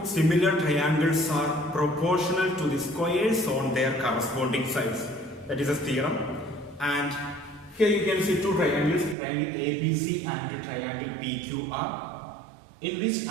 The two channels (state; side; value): drops out; left; at 9.2 s